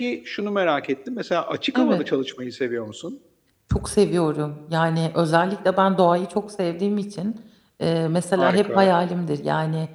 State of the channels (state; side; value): identical; both; correlation 1.00